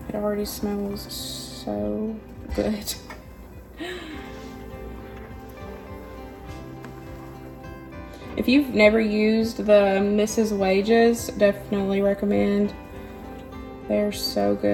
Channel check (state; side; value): identical; both; correlation 1.00